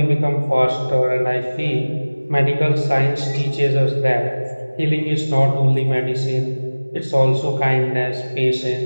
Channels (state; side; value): inverted; both; correlation -1.00